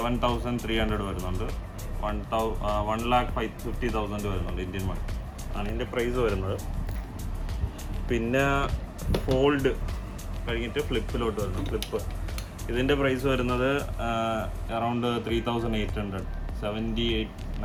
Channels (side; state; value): both; identical; correlation 1.00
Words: വരുന്നുണ്ട്. 1,50,000 വരുന്നുണ്ട് ഇന്ത്യൻ മണി ആണ് ഇതിന്റെ പ്രൈസ് വരുന്നത്. പിന്നെ ഫോൾഡ് കഴിഞ്ഞിട്ട് ഫ്ലിപ്പിലോട്ട് വരുന്നു. ഫ്ലിപ്പ് ഇതിൻ്റെ പ്രൈസ് വരുന്നത് അറൗണ്ട് 3,800,